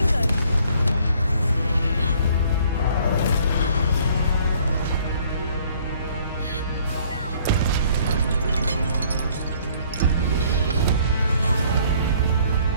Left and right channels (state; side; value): inverted; both; correlation -0.59